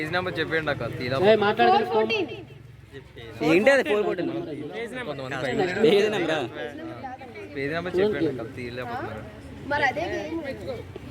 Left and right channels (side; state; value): both; identical; correlation 1.00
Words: number చెప్పండి అక్క తీరా మాట్లాడదు. 4:14. ఏంటి అది 4:14 కొంతమంది పేజ్ నెంబర్ చెప్పండి అక్క తీయలేకపోతున్నారు. మరి అదే గేమ్.